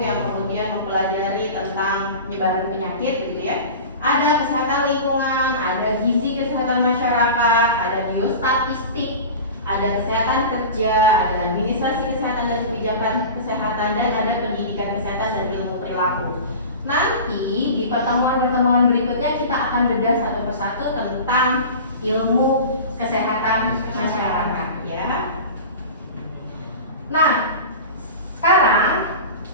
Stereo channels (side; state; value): both; inverted; correlation -0.33